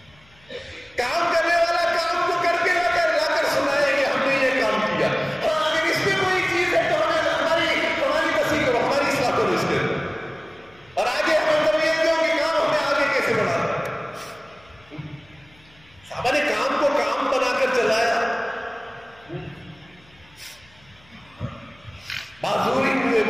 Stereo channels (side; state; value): left; noise; hum, 30 dB below the sound